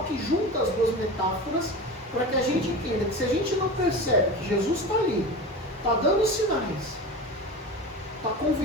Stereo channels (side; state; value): both; normal; correlation 0.30